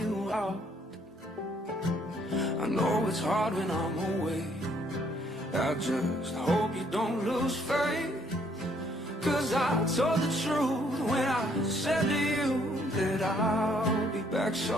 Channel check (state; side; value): normal; both; correlation 0.66